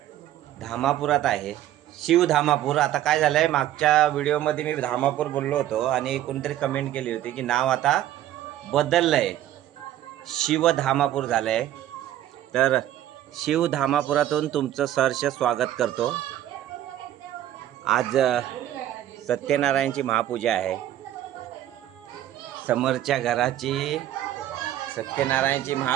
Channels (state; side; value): quieter; left; 12.6 dB